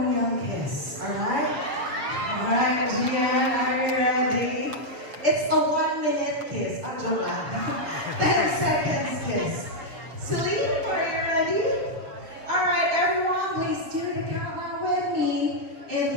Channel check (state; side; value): late; left; 6.9 ms